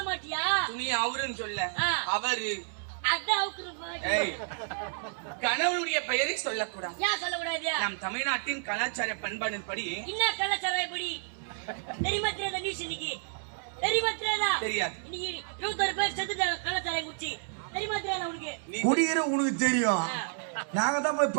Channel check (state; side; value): silent; left; 57 dB below the other